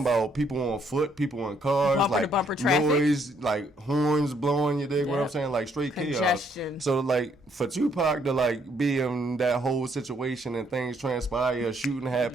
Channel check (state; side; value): normal; both; correlation 0.69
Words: about people on foot, people in cars, bumper traffic. Noise, like horns blowing, you dig what I'm saying? Like straight congestion. Chaos. So like for Tupac to like be in that whole situation and things transpire, shooting